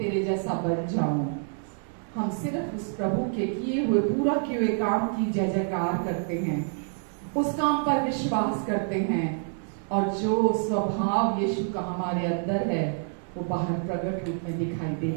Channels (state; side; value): silent; left; 60 dB below the other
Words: जैसा बन जाऊं। हम सिर्फ उस प्रभु के किए हुए, पूरा किए हुए काम की जय जयकार करते हैं, उस काम पर विश्वास करते हैं, और जो स्वभाव यीशु का हमारे अंदर है वो बाहर प्रकट रूप में दिखाई